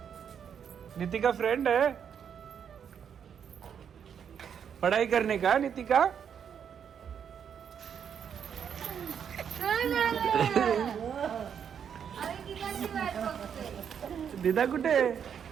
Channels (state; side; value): quieter; left; 7.9 dB